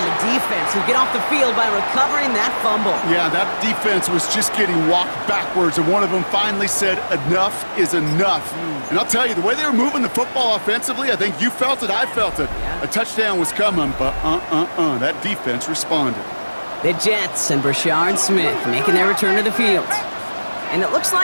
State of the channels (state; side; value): inverted; both; correlation -1.00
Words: the defense who get off the field by recovering that fumble. Yeah, that defense was just getting walked backwards, and one of them finally said, enough is enough. And I'll tell you, the way they were moving the football offensively, I think you felt it, I felt it. Yeah. A touchdown was coming, but that defense responded. The Jets and Brashard Smith making their return to the field. And it looks